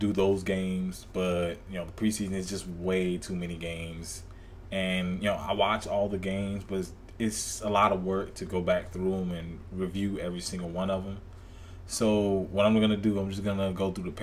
those games, but, the preseason is just way too many games. And, I watch all the games, but it's a lot of work to go back through them and review every single one of them. So what I'm going to do, I'm just going to go through the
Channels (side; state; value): both; identical; correlation 1.00